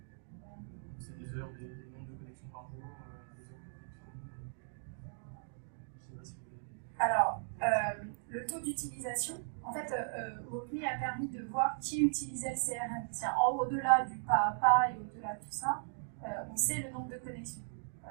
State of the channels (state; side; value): silent; left; digital silence